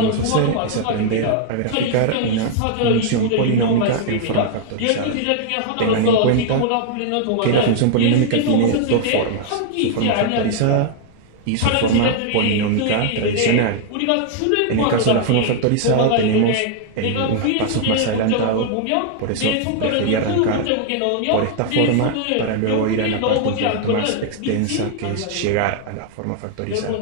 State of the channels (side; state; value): both; different; correlation 0.00